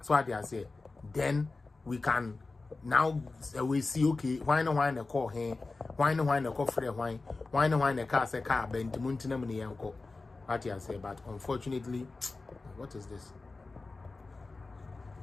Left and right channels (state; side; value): quieter; right; 3.6 dB